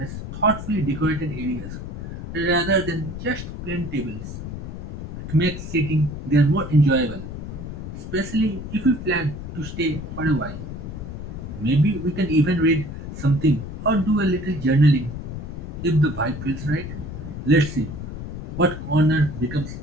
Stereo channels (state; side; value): noise; left; rumble, 8 dB below the sound